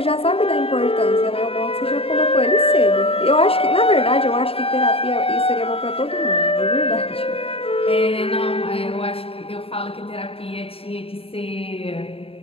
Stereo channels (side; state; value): right; late; 0.27 ms